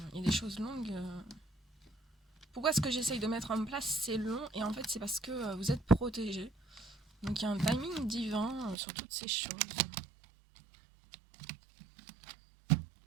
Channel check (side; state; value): left; drops out; at 8.8 s